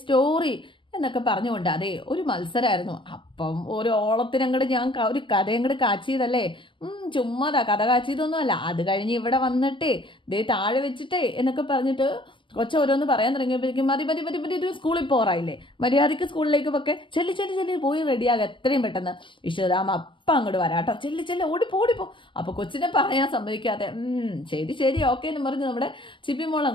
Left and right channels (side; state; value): right; late; 0.24 ms